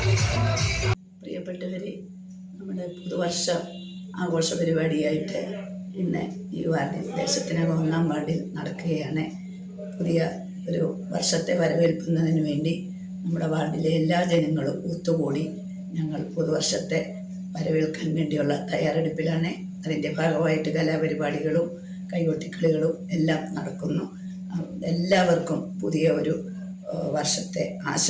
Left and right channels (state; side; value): identical; both; correlation 1.00